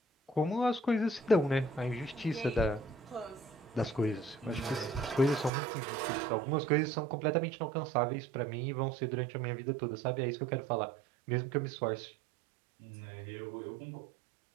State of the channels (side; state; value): left; drops out; at 5.5 s